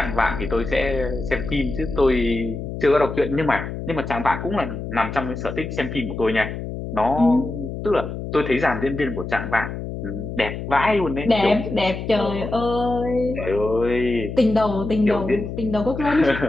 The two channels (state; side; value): noise; left; hum, 7 dB below the sound